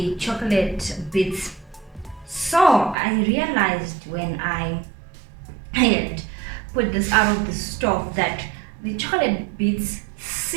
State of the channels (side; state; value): left; drops out; at 3.0 s